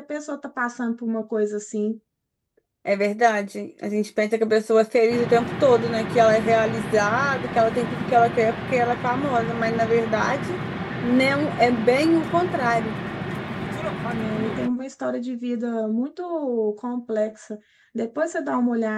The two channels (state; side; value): identical; both; correlation 1.00